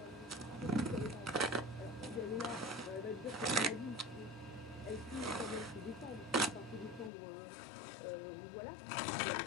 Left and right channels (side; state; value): right; drops out; at 7.1 s